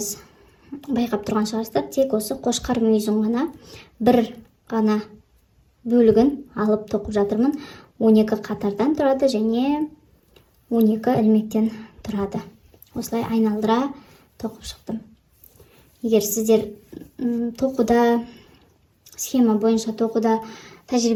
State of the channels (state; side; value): identical; both; correlation 1.00